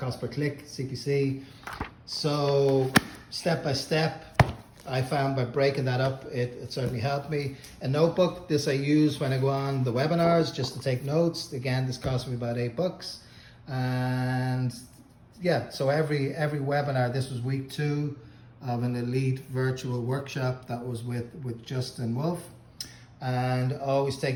per click, CPC. So step by step, I found by breaking that up, it certainly helped me. A notebook, this I use when I go on the webinars just to take notes. Again, this cost me about $8. And yeah, so every webinar, this was week 2 of an elite virtual workshop that was with Justin Wolf. And always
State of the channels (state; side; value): identical; both; correlation 1.00